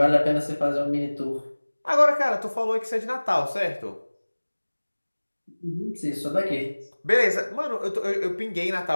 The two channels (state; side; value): inverted; both; correlation -1.00